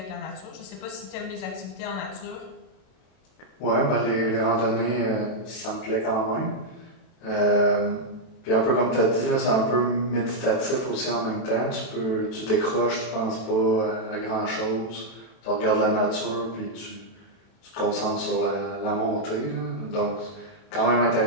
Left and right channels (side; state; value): right; late; 32 ms